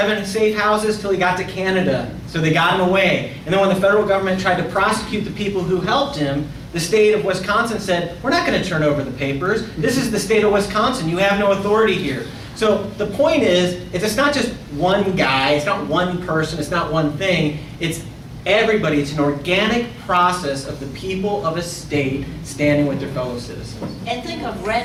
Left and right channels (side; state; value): both; identical; correlation 1.00